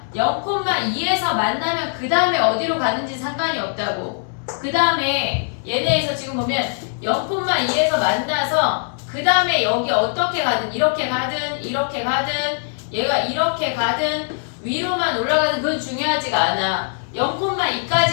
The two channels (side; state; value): right; silent; 65 dB below the other